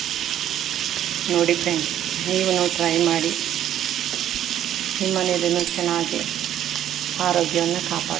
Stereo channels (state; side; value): quieter; left; 11.2 dB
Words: ನೋಡಿ ಫ್ರೆಂಡ್ಸ್, ನೀವು ಟ್ರೈ ಮಾಡಿ. ನಿಮ್ಮ ಮನೆಯಲ್ಲೂ ಚೆನ್ನಾಗಿ ಆರೋಗ್ಯವನ್ನು